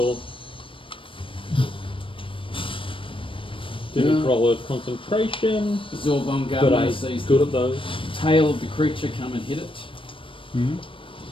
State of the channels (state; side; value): late; right; 0.25 ms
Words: Didn't Yeah. roll a concentration, Zorbon but Gavner I'm sees good the at those. tail of the creature come and hit it. Hmm?